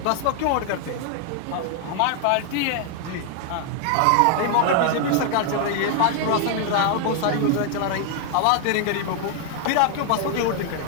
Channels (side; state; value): both; different; correlation 0.00